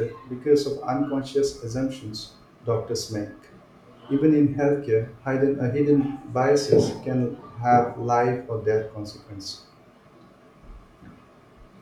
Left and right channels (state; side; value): identical; both; correlation 1.00